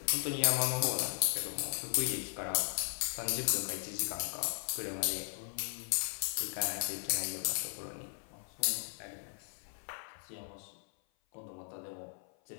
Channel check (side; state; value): right; silent; 53 dB below the other